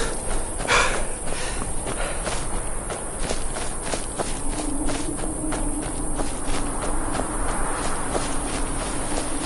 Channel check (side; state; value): both; identical; correlation 1.00